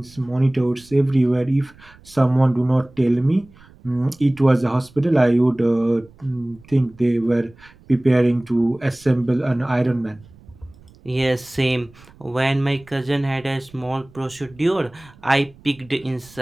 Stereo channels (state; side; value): noise; right; rumble, 26 dB below the sound